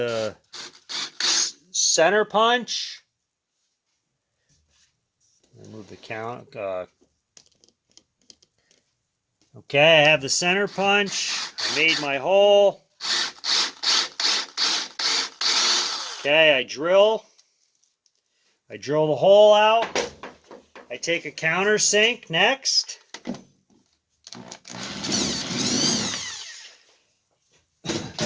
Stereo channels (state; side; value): identical; both; correlation 1.00